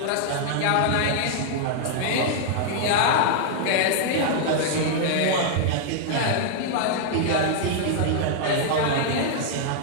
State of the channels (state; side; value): different; both; correlation -0.01